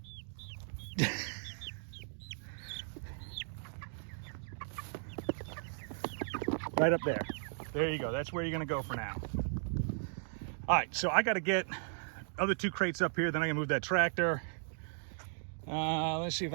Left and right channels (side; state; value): left; silent; digital silence